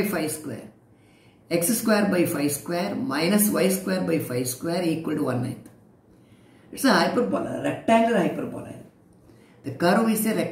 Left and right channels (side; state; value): both; identical; correlation 1.00